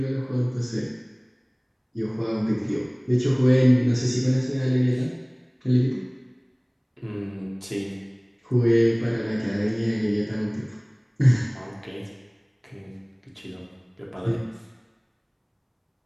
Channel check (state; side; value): identical; both; correlation 1.00